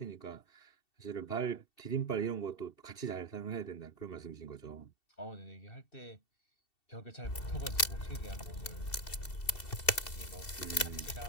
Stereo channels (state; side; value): late; right; 2.7 ms